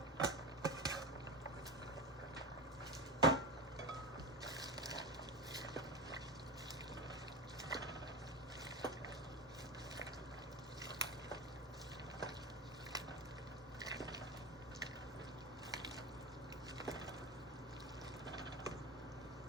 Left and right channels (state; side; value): normal; both; correlation 0.22